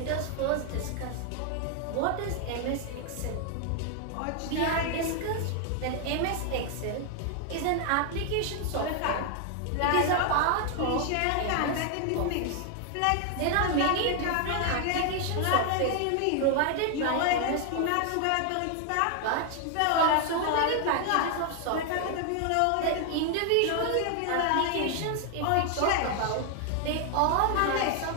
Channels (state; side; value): different; both; correlation 0.00